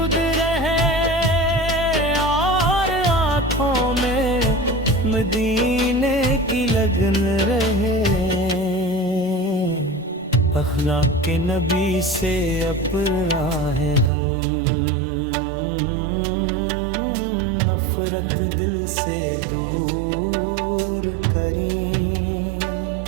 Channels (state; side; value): drops out; left; at 14.1 s